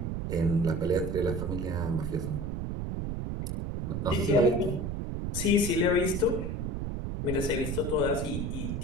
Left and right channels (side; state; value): right; noise; rumble, 3 dB below the sound